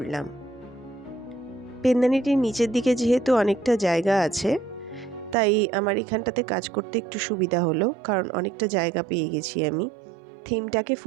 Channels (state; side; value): drops out; left; at 5.4 s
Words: পেনদানিটির নিচের দিকে যেহেতু অনেকটা জায়গা আছে, তাই আমার এখানটাতে কাজ করতে একটু সুবিধা হলো, কারণ অনেকটা জায়গা পেয়ে গেছি আমি থিমটাকে